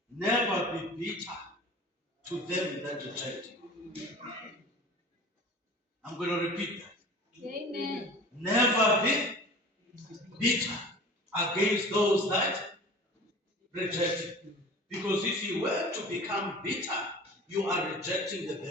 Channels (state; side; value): normal; both; correlation 0.40